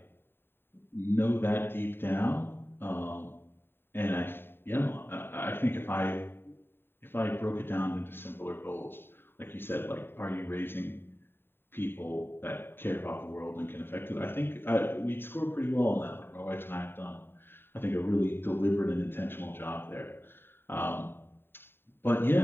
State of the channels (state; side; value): late; right; 0.11 ms